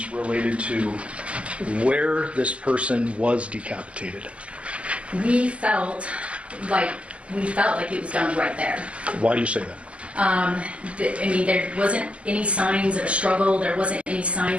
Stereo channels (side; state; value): left; late; 0.059 ms